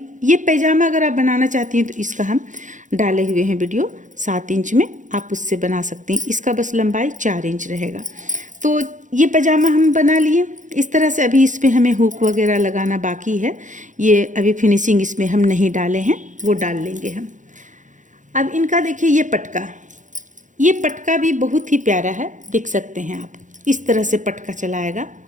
ये पैजामा अगर आप बनाना चाहती हैं तो इसका हम डाले हुए हैं वीडियो 7 इंच में, आप उससे बना सकते हैं। इसका बस लंबाई 4 इंच रहेगा। तो ये पैजामा हम बना लिए इस तरह से। अभी इस पर हमें हुक वगैरह लगाना बाकी है, ये अभी फिनिशिंग इसमें हम नहीं डाले हैं, वो डाल लेंगे हम। अब इनका देखिए ये पटका भी बहुत ही प्यारा है, देख सकते हैं आप, इस तरह से पटका चलाएगा।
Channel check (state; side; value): late; left; 0.36 ms